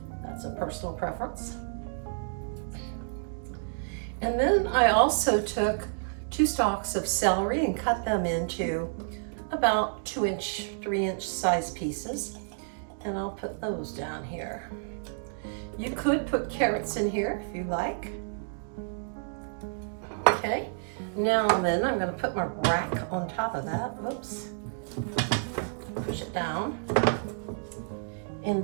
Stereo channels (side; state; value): left; silent; digital silence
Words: That's a personal preference. And then I also took 2 stalks of celery and cut them into about 2-inch, 3-inch size pieces. And I'll put those down here. You could put carrots in here if you like. Okay, now then I'm going to put my rack on top of that. Whoops. Push it down.